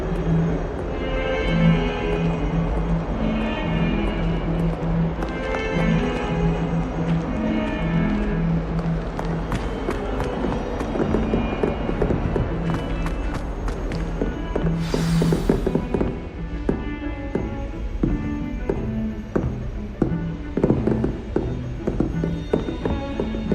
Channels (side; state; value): both; identical; correlation 1.00